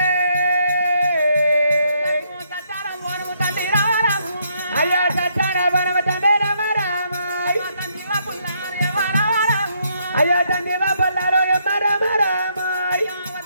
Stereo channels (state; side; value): inverted; both; correlation -0.73